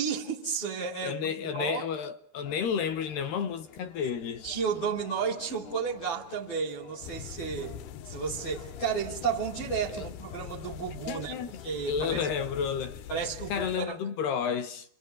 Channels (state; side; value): late; right; 12 ms